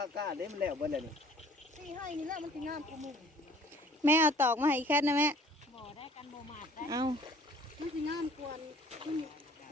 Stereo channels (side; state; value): both; normal; correlation 0.53